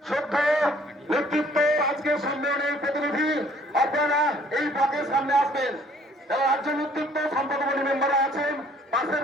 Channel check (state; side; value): normal; both; correlation 0.59